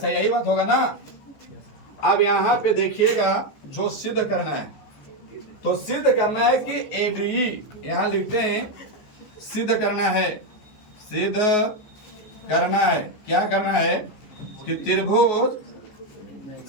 यही बात होगा ना? अब यहाँ पे देखिएगा जो सिद्ध करना है तो सिद्ध करना है कि ए डी ई यहाँ लिखते हैं सिद्ध करना है। क्या करना है कि त्रिभुज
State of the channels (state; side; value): late; right; 14 ms